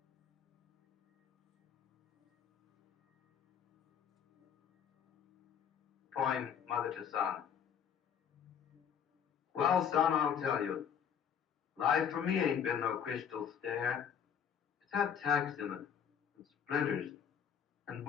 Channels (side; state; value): right; quieter; 8.0 dB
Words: Poem, Mother to Son. Well, son, I'll tell you, life for me ain't been no crystal stair. It's had tacks in it, and splinters, and